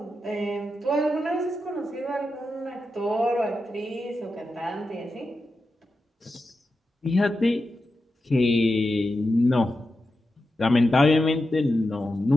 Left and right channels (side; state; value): both; normal; correlation 0.89